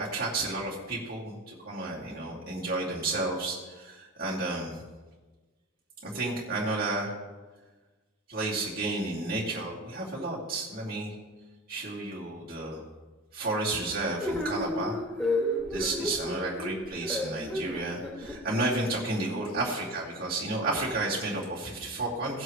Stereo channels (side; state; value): both; normal; correlation 0.31